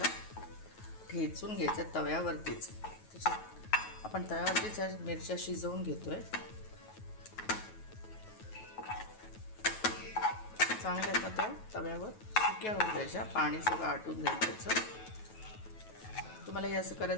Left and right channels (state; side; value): late; right; 9.3 ms